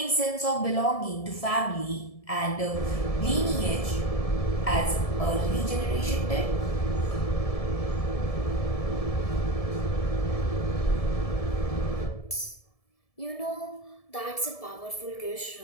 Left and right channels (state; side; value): late; right; 1.7 ms